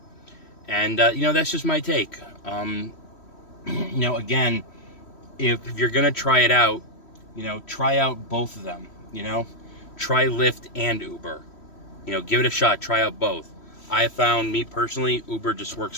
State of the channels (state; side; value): late; right; 3.1 ms